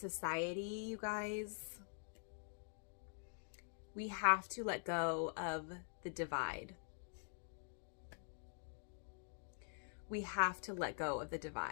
you guys, we have to let go of the divide. We have to let go of the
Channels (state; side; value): silent; right; digital silence